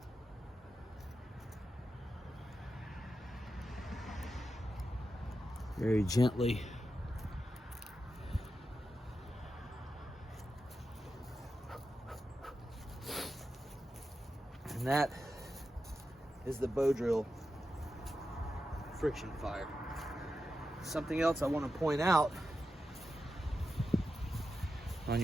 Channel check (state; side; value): normal; both; correlation 0.89